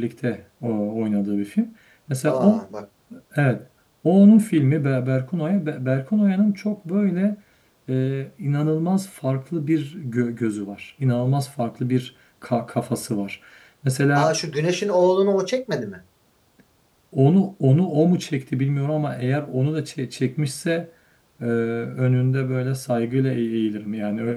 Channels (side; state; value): both; identical; correlation 1.00